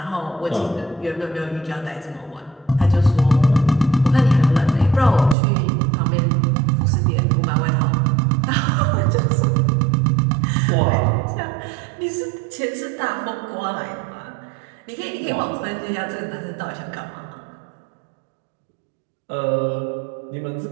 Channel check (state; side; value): drops out; left; at 5.4 s